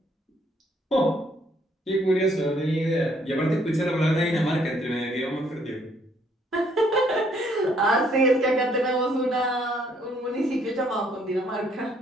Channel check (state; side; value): normal; both; correlation 0.67